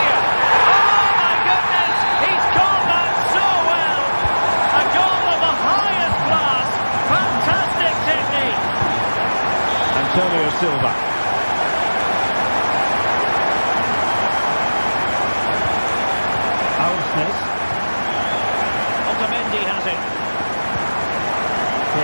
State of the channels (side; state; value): both; inverted; correlation -1.00